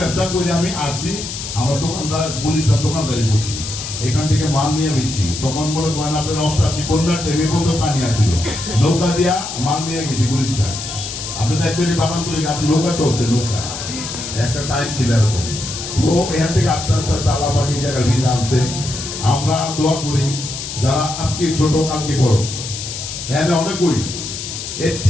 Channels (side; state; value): left; noise; hiss, 7 dB below the sound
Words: ব্যবসা করে আমি আসছি, আমার দোকানদার পুলিশদার দোকানদারি করছি, এখান থেকে মাল নিয়ে বেচছি। তখন মনে করেন আপনার 88 বন্যার টেমে বন্ধ পানি আসছিল, নৌকা দিয়া মাল নিয়ে গেছি পুলিশদার। আপনি দেখছেন বাগান তুলে আপনি নৌকা চলছে, নৌকা একটা টাইম ছিল এরকম। তো এখান থেকে আস্তে আস্তে আস্তে আল্লাহ পাক এই জায়গায় ভিড় আনছে। আমরা দোয়া করি যারা আজকে ছোট কালকে বড়, এখানে অনেকই